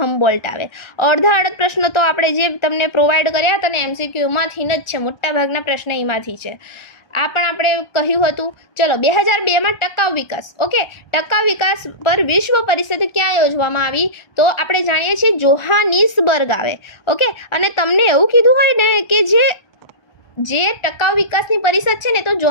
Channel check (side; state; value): right; late; 1.4 ms